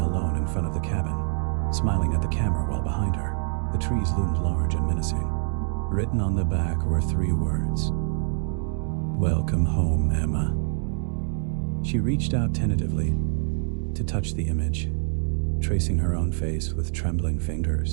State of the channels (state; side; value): silent; left; digital silence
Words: alone in front of the cabin, smiling at the camera while behind her, the trees loomed large and menacing. Written on the back were 3 words. "Welcome home, Emma." She reached out tentatively to touch the image, tracing her own face with trembling